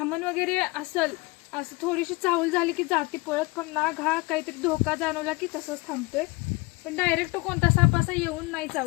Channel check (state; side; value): quieter; right; 24.6 dB